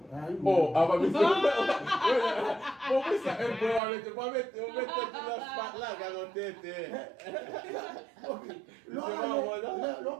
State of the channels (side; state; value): left; drops out; at 3.8 s